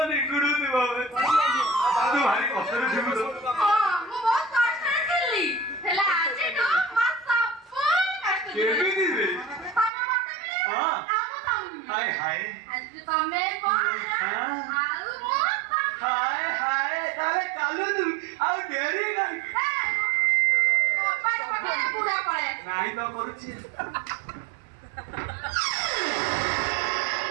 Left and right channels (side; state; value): left; drops out; at 9.9 s